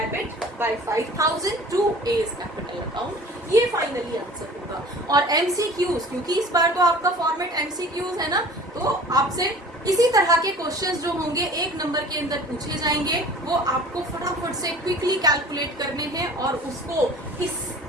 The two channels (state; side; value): normal; both; correlation 0.44